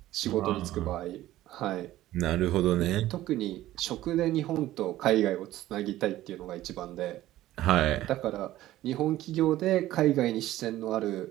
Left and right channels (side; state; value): left; quieter; 14.9 dB